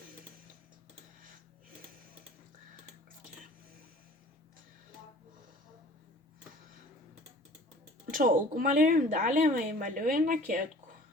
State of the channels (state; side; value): normal; both; correlation 0.48